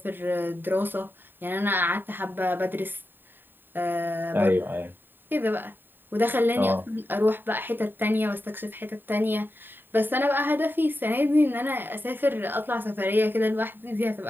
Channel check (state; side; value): late; left; 0.094 ms